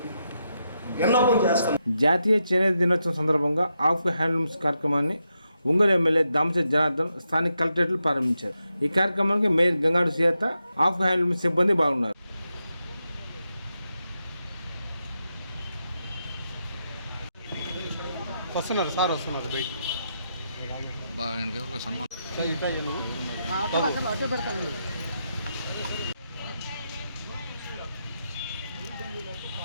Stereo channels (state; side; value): inverted; both; correlation -0.84